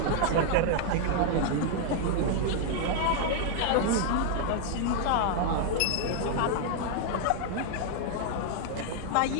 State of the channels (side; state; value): both; different; correlation 0.00